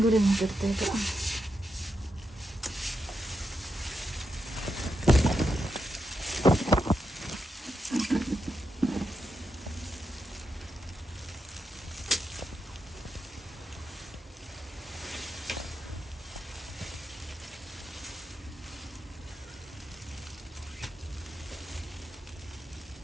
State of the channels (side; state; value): both; normal; correlation 0.86